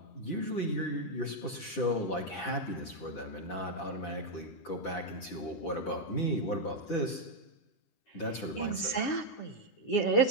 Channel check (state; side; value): late; right; 10 ms